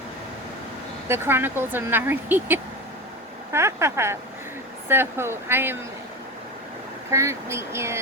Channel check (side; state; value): both; normal; correlation 0.25